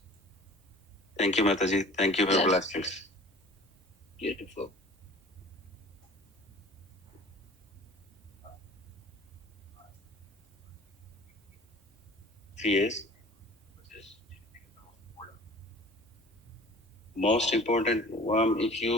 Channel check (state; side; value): normal; both; correlation 0.45